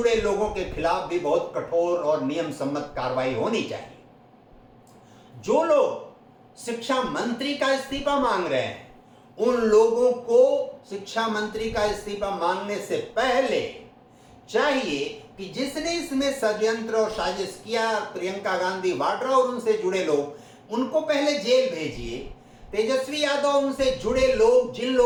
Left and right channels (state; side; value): identical; both; correlation 1.00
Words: लोगों के खिलाफ भी बहुत कठोर और नियम सम्मत कार्रवाई होनी चाहिए। जो लोग शिक्षा मंत्री का इस्तीफा मांग रहे हैं, उन लोगों को शिक्षा मंत्री का इस्तीफा मांगने से पहले चाहिए कि जिसने इसमें षड्यंत्र और साजिश किया, प्रियंका गांधी वाड्रा और उनसे जुड़े लोग, उनको पहले जेल भेजिए। तेजस्वी यादव, उनसे जुड़े लोग, जिन